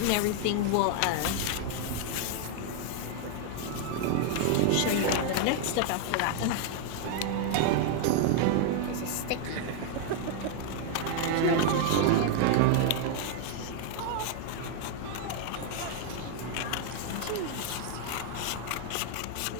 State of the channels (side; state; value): both; different; correlation 0.00